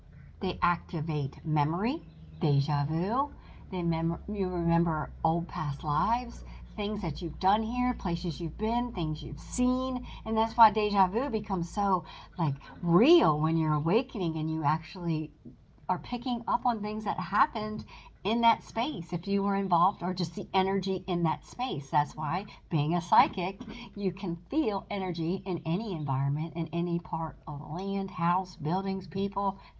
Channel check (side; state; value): both; identical; correlation 1.00